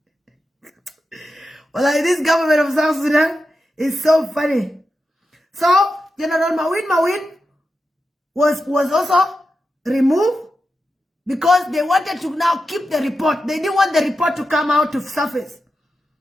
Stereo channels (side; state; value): both; normal; correlation 0.89